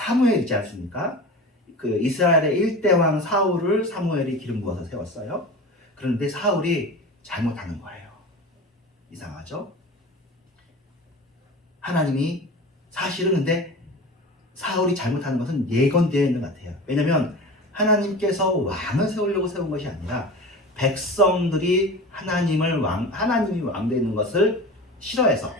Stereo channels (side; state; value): both; normal; correlation 0.33